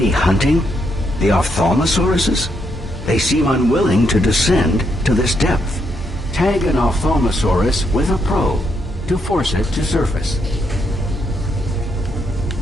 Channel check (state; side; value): normal; both; correlation 0.77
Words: hunting the ophthalmosauruses? They seem unwilling to descend to this depth. Tag an ophthalmosaurus with a probe to force it to surface.